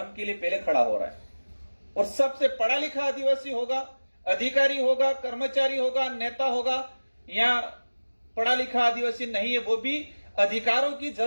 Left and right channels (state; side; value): inverted; both; correlation -1.00